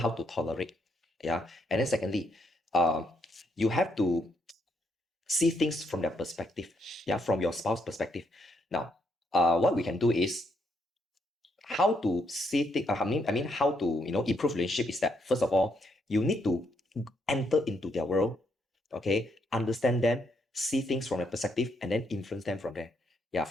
to tolerate. Yeah. And then secondly, you have to see things from their perspective. Yeah, from your spouse perspective. Now, what we can do is how to see things. I mean, how to improve relationship is that first of all, you need to enter into their world. Okay, understand them, see things from their perspective, and then influence them from there. Yeah,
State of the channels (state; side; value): normal; both; correlation 0.75